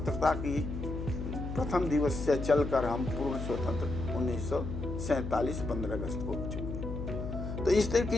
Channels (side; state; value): left; noise; hum, 5 dB below the sound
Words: की प्रथम दिवस से चलकर हम पूर्ण स्वतंत्र 1947 15 अगस्त को हो चुके हैं। तो इस तरह